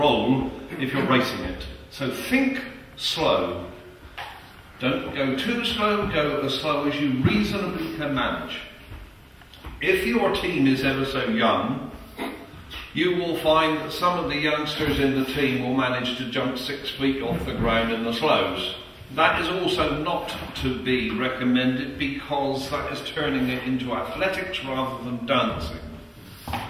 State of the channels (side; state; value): both; identical; correlation 1.00